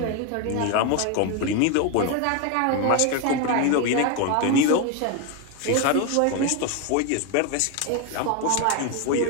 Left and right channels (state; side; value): different; both; correlation 0.02